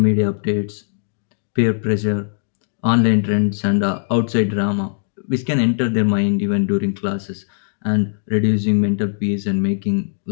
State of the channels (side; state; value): right; silent; digital silence